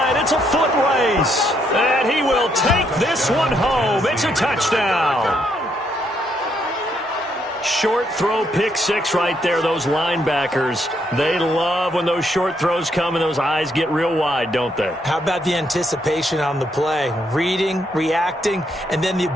It's a foot race. And he will take this one home. It's a touchdown. Short throw, pick six right there. Those linebackers, they love when those short throws come and those eyes get real wide, don't they? How about the anticipation on the play? Reading, reacting, and then the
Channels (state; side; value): normal; both; correlation 0.74